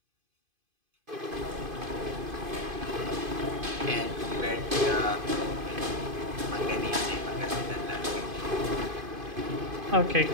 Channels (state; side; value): late; left; 2.5 ms